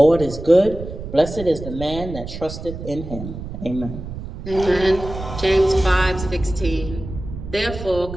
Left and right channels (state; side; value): noise; right; rumble, 10 dB below the sound